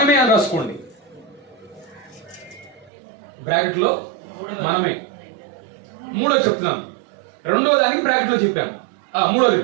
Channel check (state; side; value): drops out; left; at 2.9 s